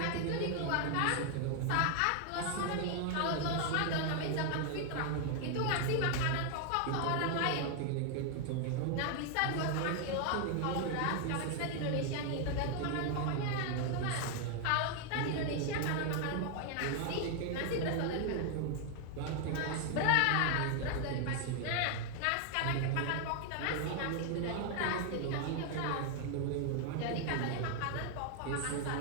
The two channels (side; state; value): both; different; correlation 0.00